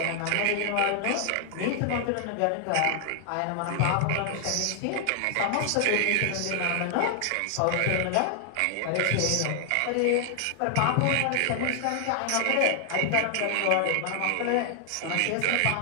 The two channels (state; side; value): different; both; correlation 0.00